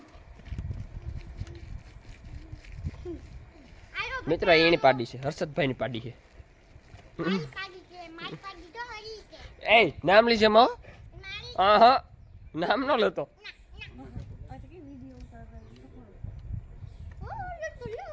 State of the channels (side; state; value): both; identical; correlation 1.00